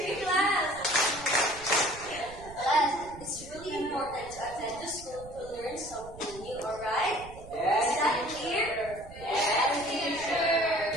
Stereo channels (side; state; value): right; noise; rumble, 17 dB below the sound